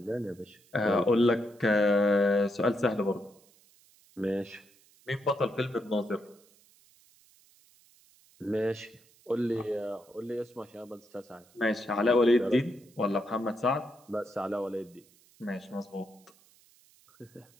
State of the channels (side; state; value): right; noise; hiss, 29 dB below the sound